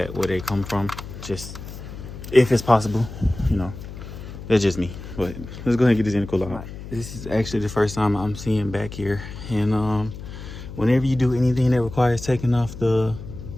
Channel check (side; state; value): left; noise; hum, 12 dB below the sound